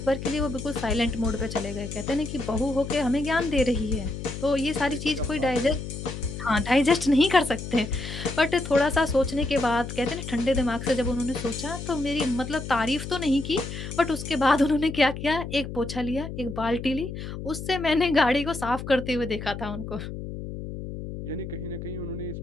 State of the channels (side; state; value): left; noise; hum, 8 dB below the sound